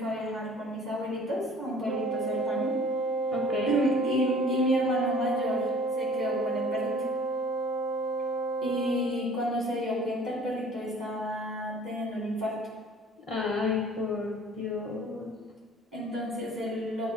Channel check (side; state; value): both; normal; correlation 0.50